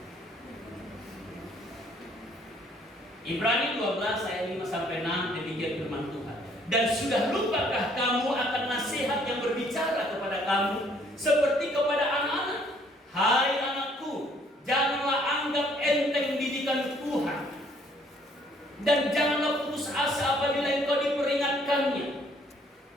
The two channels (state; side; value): normal; both; correlation 0.63